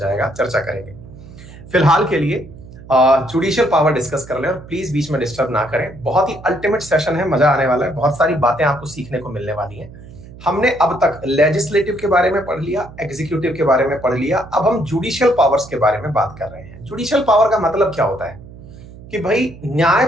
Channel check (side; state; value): right; noise; hum, 17 dB below the sound